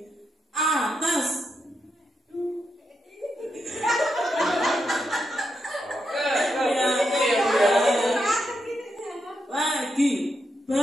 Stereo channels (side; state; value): both; normal; correlation 0.84